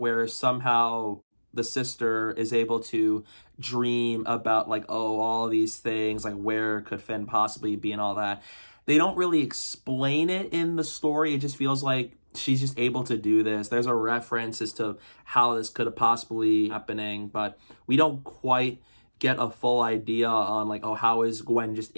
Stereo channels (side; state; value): both; inverted; correlation -1.00